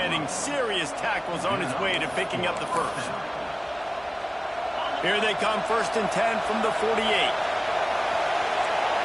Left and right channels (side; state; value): both; identical; correlation 1.00